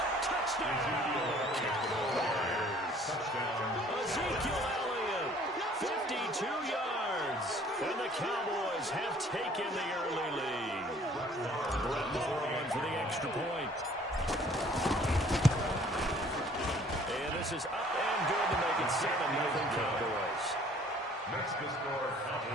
Touchdown, Cowboys. Ezekiel Elliott, 52 yards. And the Cowboys have taken the early lead. Brett Moore on for the extra point. And this is up and good to make it 7-0 Cowboys. Next to score,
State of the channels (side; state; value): both; normal; correlation 0.55